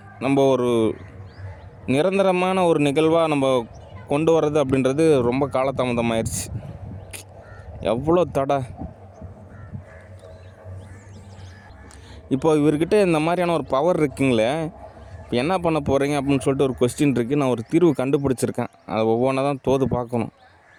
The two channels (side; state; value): both; identical; correlation 1.00